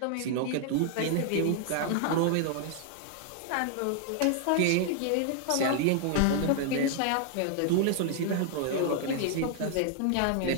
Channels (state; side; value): different; both; correlation 0.00